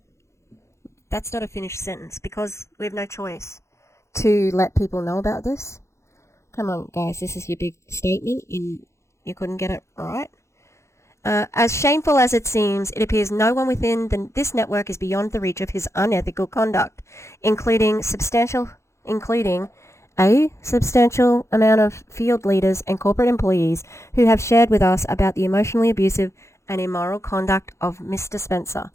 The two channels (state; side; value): late; right; 0.14 ms